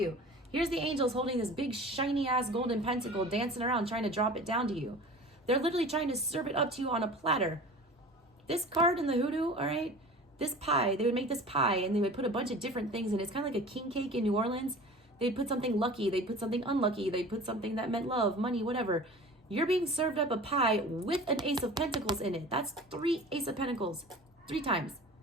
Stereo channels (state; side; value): normal; both; correlation 0.40